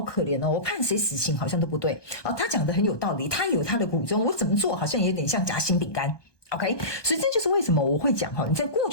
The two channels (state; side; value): late; right; 1.2 ms